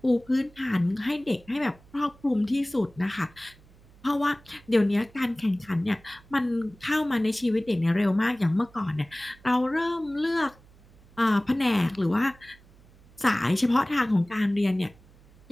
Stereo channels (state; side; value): noise; right; hum, 26 dB below the sound